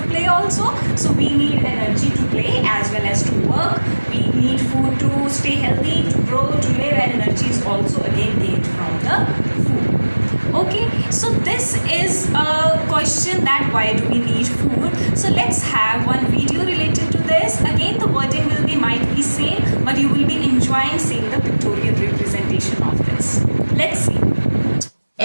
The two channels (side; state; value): both; inverted; correlation -1.00